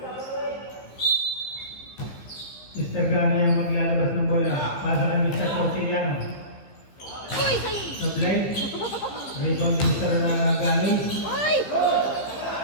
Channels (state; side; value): late; right; 15 ms